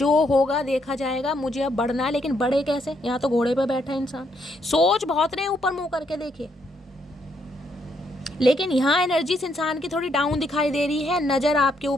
होगा देखा जाएगा, मुझे अब बढ़ना है। लेकिन बढ़े कैसे, यहाँ तो घोड़े पे बैठा है इंसान, सोच बहुत रहे, ऊपर मुंह करके देखिए। लेकिन यहाँ एनर्जी इस इंसान की थोड़ी डाउन दिखाई दे रही है, नज़र आपके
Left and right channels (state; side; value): normal; both; correlation 0.74